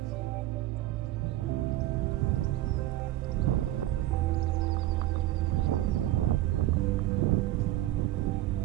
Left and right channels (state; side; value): quieter; left; 14.9 dB